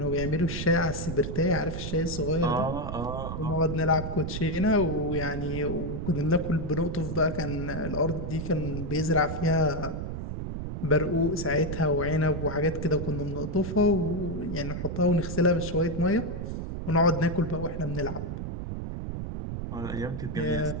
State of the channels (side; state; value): right; noise; rumble, 5 dB below the sound